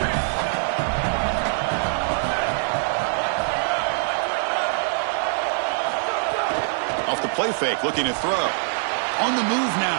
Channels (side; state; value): left; silent; digital silence